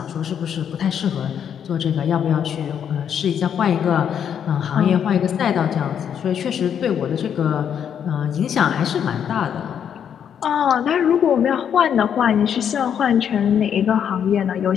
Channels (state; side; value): quieter; right; 8.5 dB